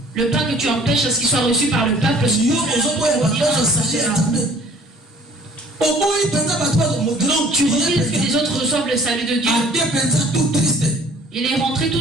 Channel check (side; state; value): both; normal; correlation 0.53